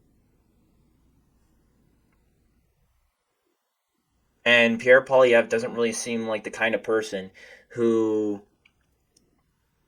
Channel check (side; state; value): both; identical; correlation 1.00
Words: And Pierre Poilievres doesn't really seem like the kind of person who